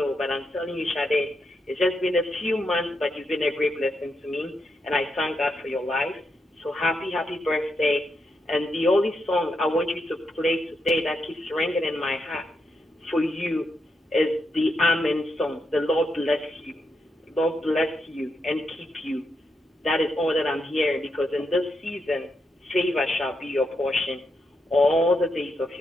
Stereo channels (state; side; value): normal; both; correlation 0.83